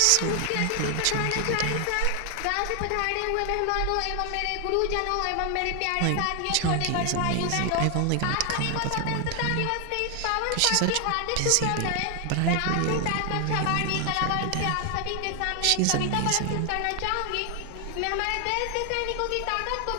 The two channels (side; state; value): both; different; correlation 0.00